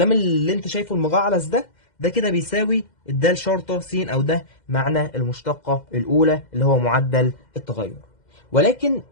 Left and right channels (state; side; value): late; right; 2.1 ms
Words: اللي انت شايفه المجعلص ده كده بيساوي الدال شرطه س، او ده معنى المشتقه الاولى اللي هو معدل التغير. ولكن